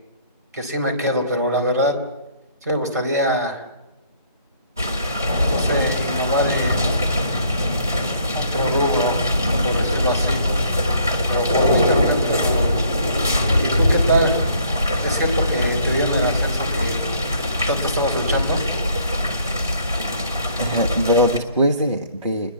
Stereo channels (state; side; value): inverted; both; correlation -0.62